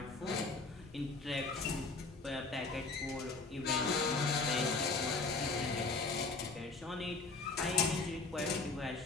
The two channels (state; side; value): quieter; right; 4.0 dB